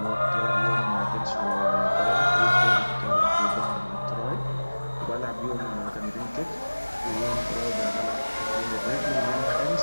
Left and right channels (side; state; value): both; inverted; correlation -1.00